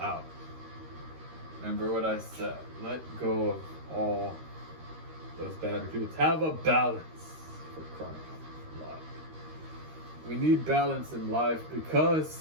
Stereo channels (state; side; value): late; left; 13 ms